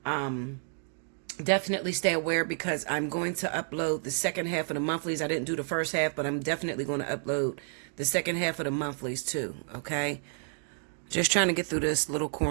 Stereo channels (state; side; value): silent; left; 55 dB below the other